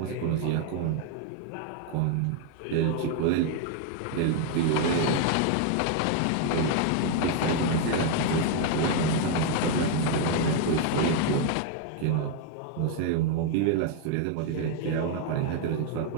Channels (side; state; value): both; different; correlation 0.00